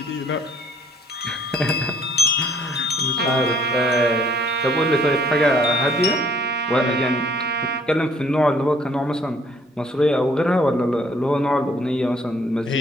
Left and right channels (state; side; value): normal; both; correlation 0.60